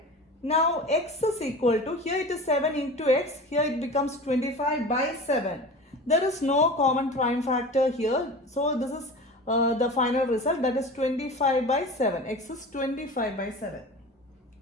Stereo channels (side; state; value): both; normal; correlation 0.35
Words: Now x is equal to, here it is 7 into x, here it becomes 25 by 7. There is no common prime factor here. So this is the final result, that is 25 by 7. X is 25 by 7.